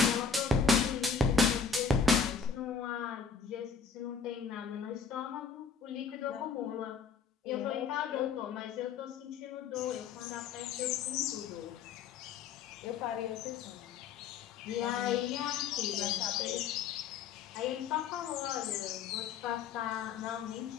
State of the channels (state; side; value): quieter; right; 5.8 dB